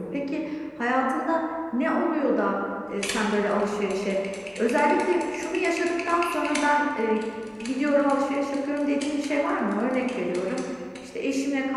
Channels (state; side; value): identical; both; correlation 1.00